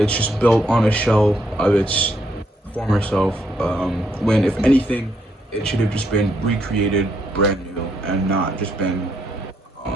just built on a shell of its former self. When, if anything, it should have just been recreated brand new and not just been,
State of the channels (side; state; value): both; normal; correlation 0.75